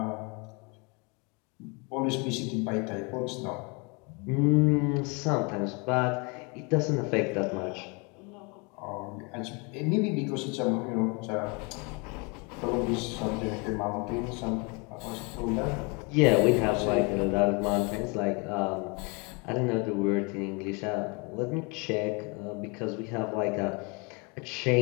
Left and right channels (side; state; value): right; quieter; 31.0 dB